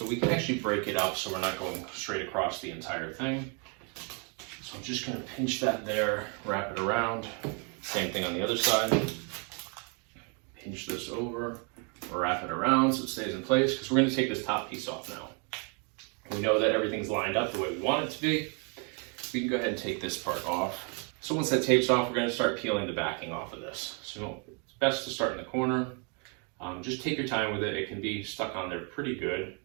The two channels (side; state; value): left; quieter; 36.8 dB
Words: we can actually break it up so we're not going straight across the entire thing. So I'm just going to pinch that there, wrap it around. Same thing on the other side. Pinch this over, wrap it around so it stays in place, because we're going to take this top piece off now. We know that everything's lined up the way we want it to be. We can go ahead and take this part off. So once that tape's off, we're going to start peeling the backing off of this. So it's best to start in the corner. Just take your time with it. It can be stuck on there pretty good.